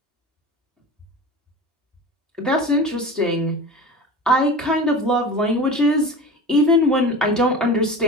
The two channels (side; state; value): both; normal; correlation 0.33